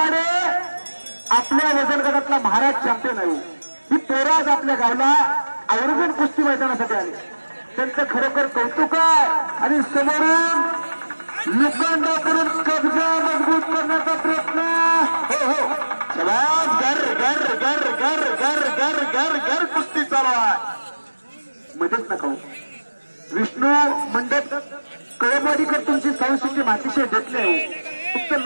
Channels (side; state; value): both; inverted; correlation -1.00